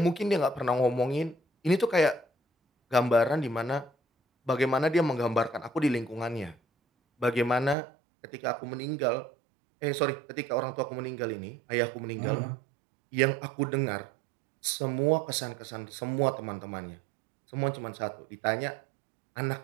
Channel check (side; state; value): left; drops out; at 7.8 s